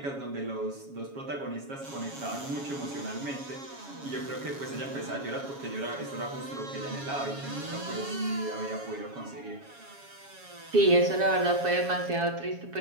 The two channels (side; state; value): left; late; 7.2 ms